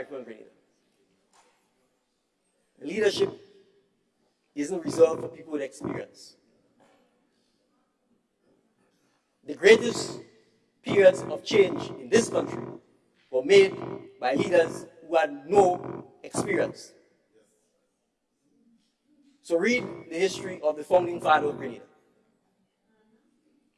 and Grenada. Leadership isn't reserved for people with experience. the greatest periods of change in this country were made by leaders who had no experience. So read the history of the founding father of Grenada.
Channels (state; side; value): identical; both; correlation 1.00